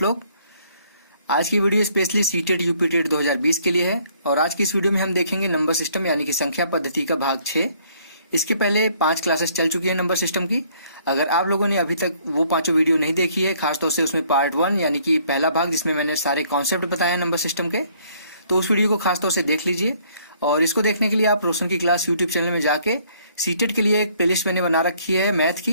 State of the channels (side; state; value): both; inverted; correlation -0.63